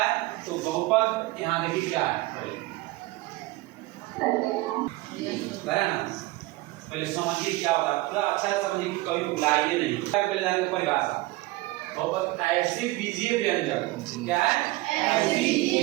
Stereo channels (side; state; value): left; quieter; 19.9 dB